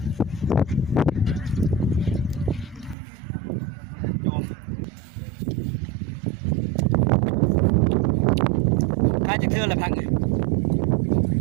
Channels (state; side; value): drops out; left; at 3.0 s